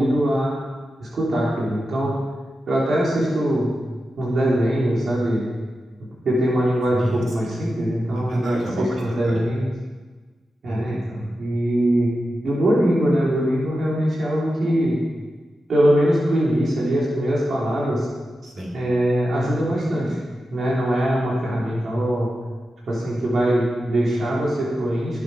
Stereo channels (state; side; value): normal; both; correlation 0.91